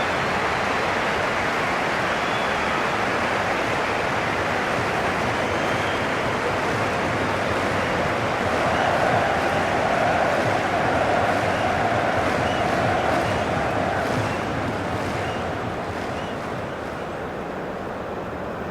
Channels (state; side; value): identical; both; correlation 1.00